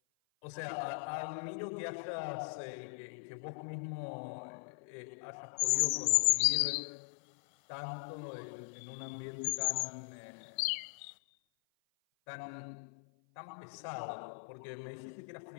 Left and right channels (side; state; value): right; silent; 52 dB below the other